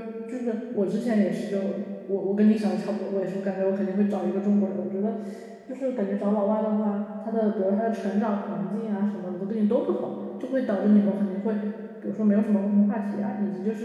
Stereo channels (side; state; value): both; identical; correlation 1.00